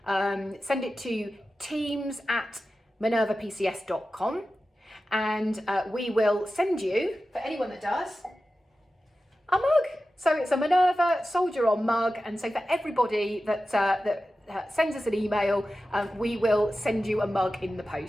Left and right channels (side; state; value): both; normal; correlation 0.93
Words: send it to teams@minervapcs.com, and we will send you, for anyone that does, a mug. So it's a Minerva Soldier On mug, and so for everybody that sends us an email, we will send you a mug in the